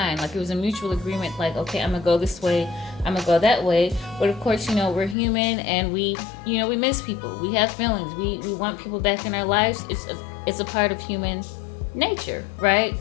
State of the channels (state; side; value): drops out; right; at 5.2 s